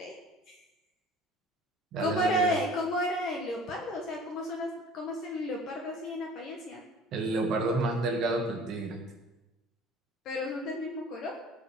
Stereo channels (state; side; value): normal; both; correlation 0.47